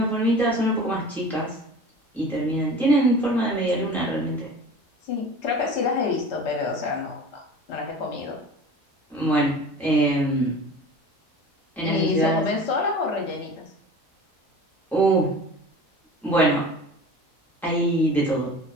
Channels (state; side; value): normal; both; correlation 0.39